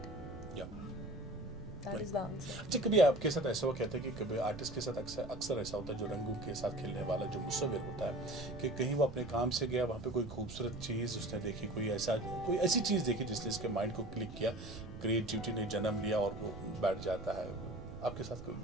That is the answer. अच्छा, कभी आपके साथ ऐसा हुआ, कहते हैं कि कभी आर्टिस्ट के साथ अक्सर ऐसा होता है, जो रंगों के साथ खेलने वाला जो मुसव्विर होता है, कि कहीं वो अपने काम से गया, वहाँ पे कोई खूबसूरत चीज़ उसने देखी, कोई ऐसी चीज़ देखी जिसने इसके माइंड को क्लिक किया, क्रिएटिविटी ने जन्म लिया और वो बैठ जाता है। आपके साथ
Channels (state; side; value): noise; right; rumble, 11 dB below the sound